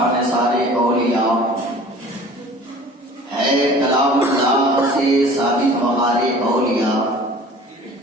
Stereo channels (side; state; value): both; normal; correlation 0.46